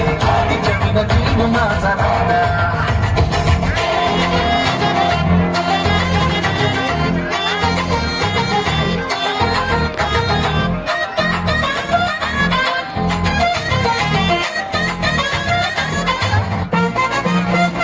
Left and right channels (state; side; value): identical; both; correlation 1.00